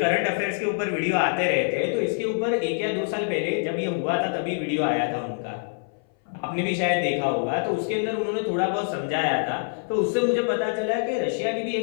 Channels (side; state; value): right; silent; 58 dB below the other